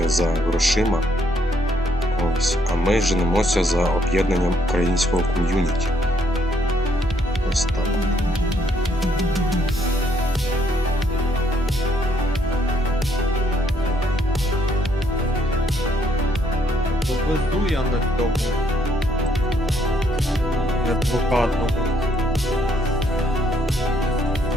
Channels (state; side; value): normal; both; correlation 0.70